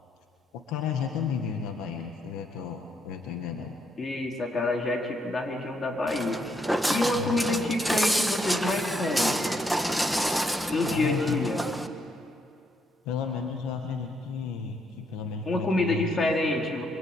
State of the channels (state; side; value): normal; both; correlation 0.74